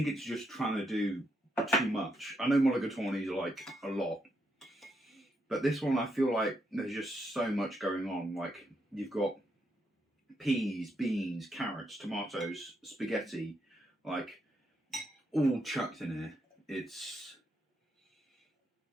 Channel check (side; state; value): both; normal; correlation 0.79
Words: it's just trying to do too much. I know mulligatawny is like a lot, but this one I feel like there's just so much going on. Like, you've got peas, beans, carrots, tomatoes, spaghetti, like all chucked in here. It's